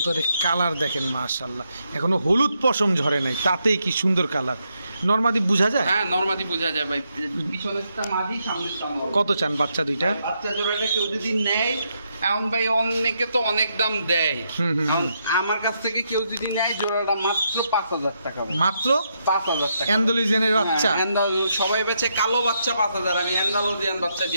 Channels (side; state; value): both; inverted; correlation -0.80